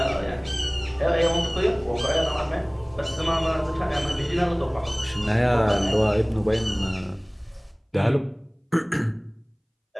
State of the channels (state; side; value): identical; both; correlation 1.00